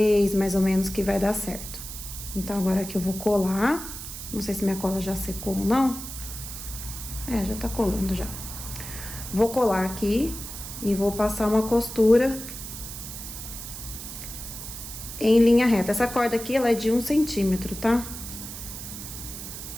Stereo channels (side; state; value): right; noise; hiss, 10 dB below the sound